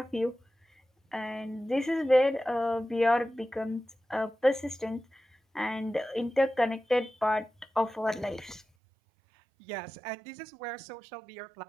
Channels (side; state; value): left; drops out; at 8.7 s